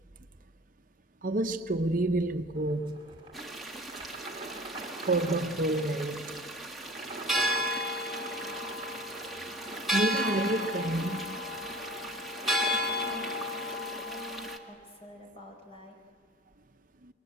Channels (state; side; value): normal; both; correlation 0.42